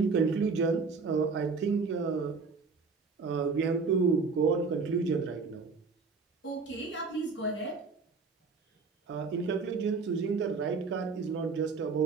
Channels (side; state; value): left; quieter; 4.7 dB